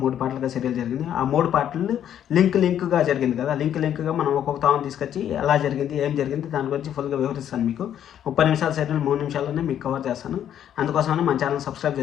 3 పార్ట్లుగా సీరియల్ జరిగింది. ఆ 3 పార్ట్లు లింక్గా జరిగింది కదా. లింక్గా మనం ఒక్కొక్క తాను తీసుకొచ్చి ఎలా జరిగింది ఏం జరిగింది దాని గురించి ఫుల్గా వివరిస్తాను. మీకు 30 నిమిషాల సీరియల్ 3 నిమిషాల్లోనే మీకు కవర్ చేస్తాను. అందుకోసమని మన ఛానల్ సబ్స్క్రైబ్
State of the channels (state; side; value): quieter; right; 10.1 dB